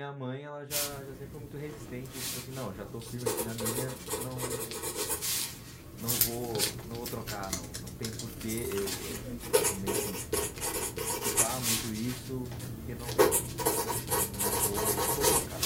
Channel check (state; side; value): identical; both; correlation 1.00